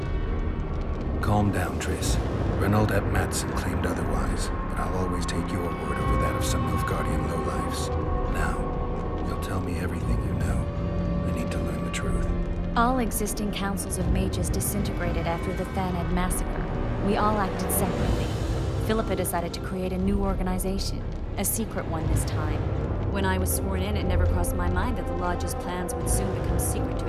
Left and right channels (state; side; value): identical; both; correlation 1.00